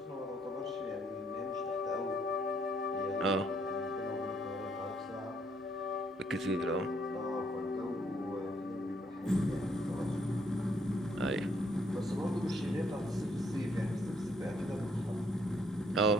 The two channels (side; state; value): both; normal; correlation 0.69